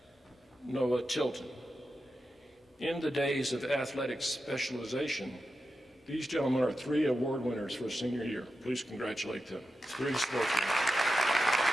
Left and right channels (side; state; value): both; normal; correlation 0.91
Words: Noah Tilton. In the days of athletic specialization, these gentlemen are 3 award winners for senior year. Please congratulate them. 3 sportsmen.